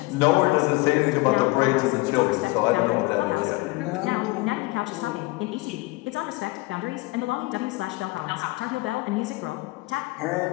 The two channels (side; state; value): right; quieter; 23.0 dB